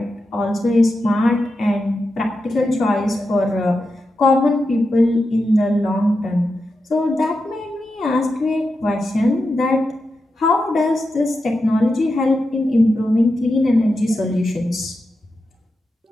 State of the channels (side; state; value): both; normal; correlation 0.89